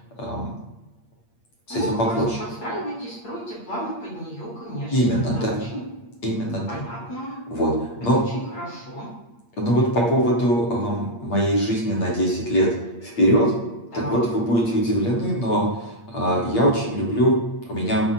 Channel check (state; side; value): late; right; 8.6 ms